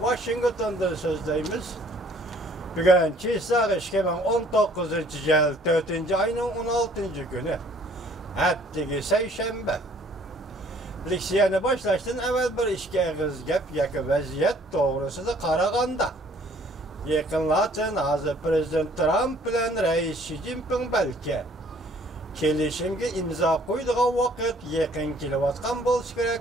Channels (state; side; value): normal; both; correlation 0.58